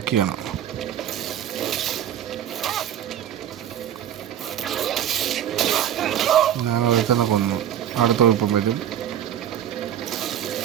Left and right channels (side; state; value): left; quieter; 10.4 dB